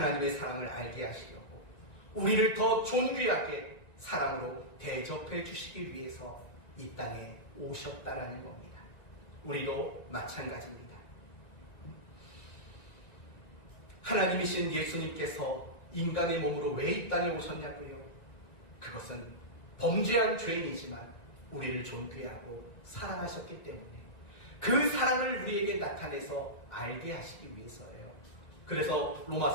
사랑을 알게 하시려고 우리를 더 존귀하게 사랑으로 대접해 주시기 위해서 이 땅에 오셨다라는 겁니다. 우리도 마찬가지입니다. 하나님이신 예수님께서 인간의 몸으로 왜 이 땅에 오셨냐고요? 그것은 범죄한 죄인이지만 우리를 존귀하고 사랑하셨기 때문에 그 사랑을 우리에게 나타내서 알게 하시기 위해서예요. 그래서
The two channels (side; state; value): right; late; 2.2 ms